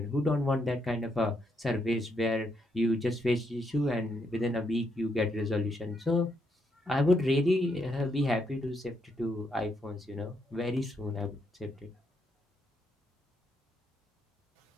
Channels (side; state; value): both; normal; correlation 0.77